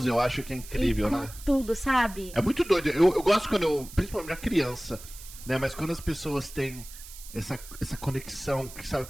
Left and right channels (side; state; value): right; noise; hiss, 16 dB below the sound